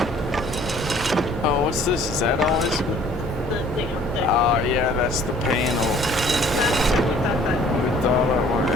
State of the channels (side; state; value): both; normal; correlation 0.55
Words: Oh, what's this? Is that always? The thing up there. Oh, yeah, that's the panel. Last time we thought that. We thought it was,